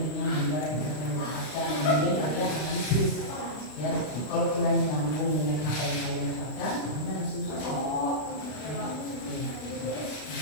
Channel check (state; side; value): late; right; 32 ms